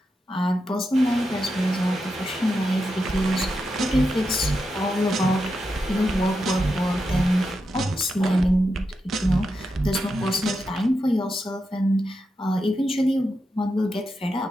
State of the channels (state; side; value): normal; both; correlation 0.87